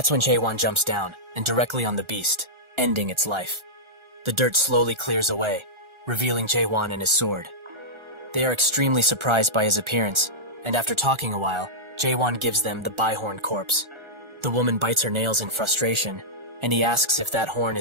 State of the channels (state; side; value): late; left; 1.4 ms